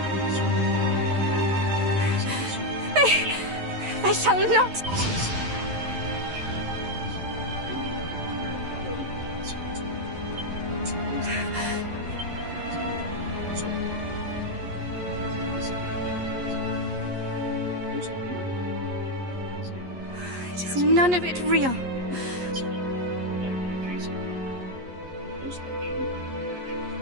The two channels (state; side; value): late; left; 11 ms